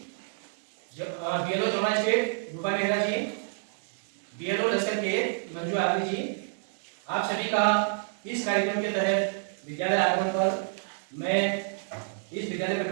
BLO Jamuna state रूपा मेहरा जी, बीएलओ लश्कर के मंजू आदमी जी, आप सभी का इस कार्यक्रम के तहत विद्यालय आगमन पर मैं इस विद्यालय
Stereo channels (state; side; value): silent; left; digital silence